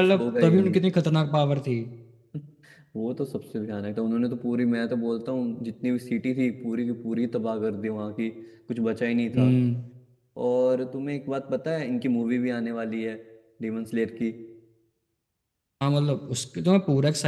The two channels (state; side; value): identical; both; correlation 1.00